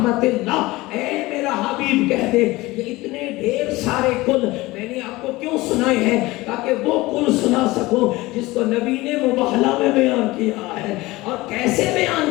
اللہ، اے میرا حبیب کہہ دے۔ یہ اتنے ڈھیر سارے کل میں نے آپ کو کیوں سنائے ہیں؟ تاکہ وہ کل سنا سکو جس کو نبی نے مباہلہ میں بیان کیا ہے اور کیسے بیان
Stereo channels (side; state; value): right; quieter; 20.1 dB